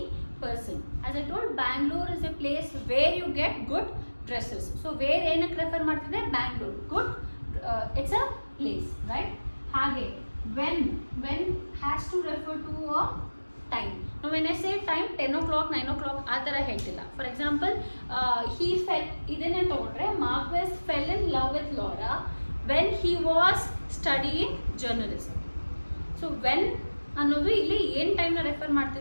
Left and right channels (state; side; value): inverted; both; correlation -1.00